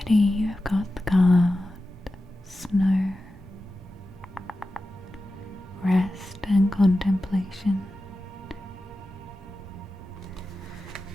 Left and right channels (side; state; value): both; normal; correlation 0.93